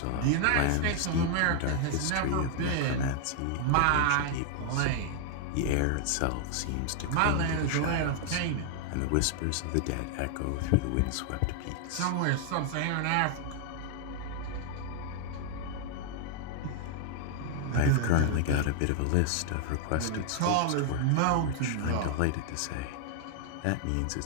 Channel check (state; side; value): different; both; correlation 0.00